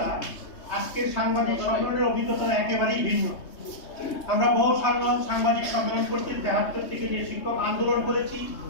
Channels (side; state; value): right; late; 3.2 ms